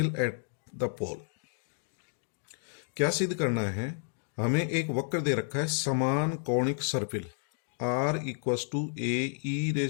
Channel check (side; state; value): right; silent; digital silence